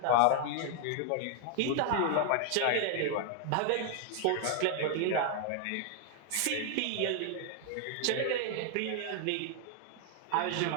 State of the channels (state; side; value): different; both; correlation 0.00